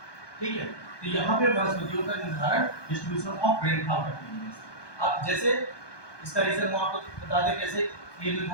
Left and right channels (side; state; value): right; late; 1.2 ms